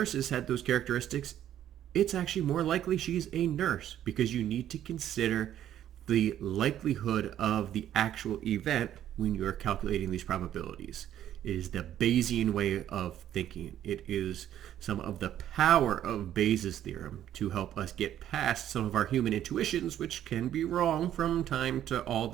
had those characteristics, it's actually more likely she's a nurse because you need to consider the likelihood of the actual event when you're calculating these probabilities. It is the Bayesian way of thinking. It is some of the power of Bayes' theorem to help us get past some of our human intuitions, which can be wrong from time to all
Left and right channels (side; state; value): left; quieter; 11.3 dB